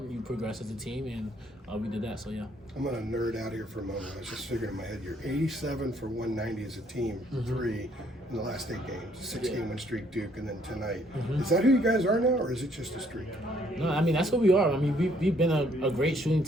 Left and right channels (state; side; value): normal; both; correlation 0.66